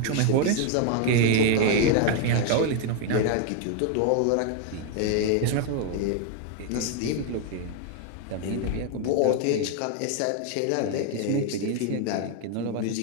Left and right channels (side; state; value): both; different; correlation 0.01